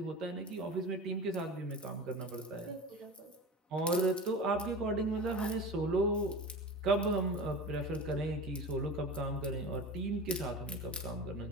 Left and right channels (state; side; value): normal; both; correlation 0.32